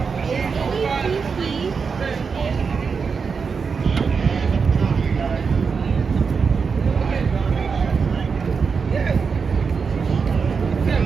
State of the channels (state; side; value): quieter; left; 5.5 dB